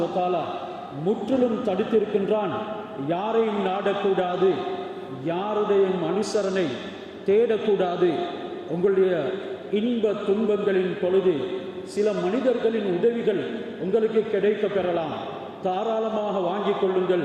வ தஆலா முற்றிலும் தடுத்திருக்கின்றான். யாரையும் நாடக்கூடாது, யாருடைய அனுசரணை தேடக்கூடாது. உங்களுடைய இன்ப துன்பங்களின் பொழுது சில மனிதர்களின் உதவிகள் உங்களுக்கு கிடைக்க பெறலாம். தாராளமாக வாங்கிக்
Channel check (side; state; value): both; identical; correlation 1.00